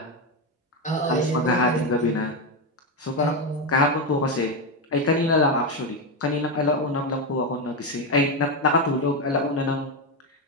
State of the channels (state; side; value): normal; both; correlation 0.10